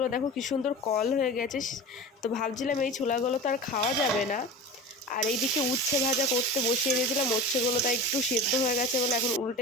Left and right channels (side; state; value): both; normal; correlation 0.33